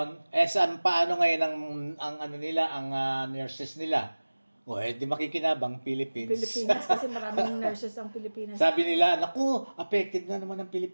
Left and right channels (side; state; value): both; inverted; correlation -1.00